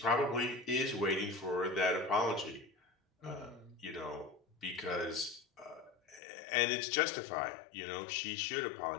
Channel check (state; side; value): drops out; right; at 6.2 s